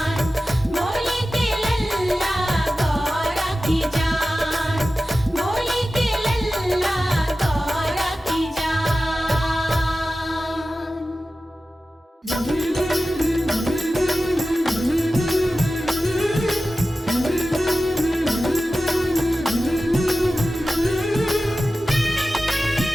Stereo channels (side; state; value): both; normal; correlation 0.94